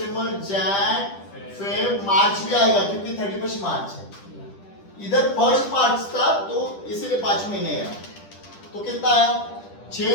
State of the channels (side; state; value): right; late; 10 ms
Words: जैन, फेब, मार्च भी आएगा क्योंकि 31 मार्च है। इधर 1 मार्च था तो इसीलिए 5 महीने है। तो कितना आया,